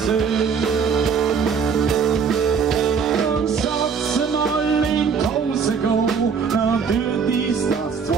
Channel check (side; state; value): left; quieter; 6.0 dB